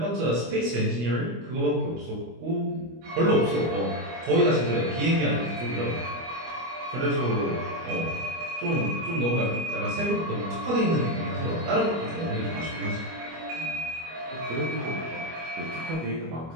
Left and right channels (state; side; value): late; left; 25 ms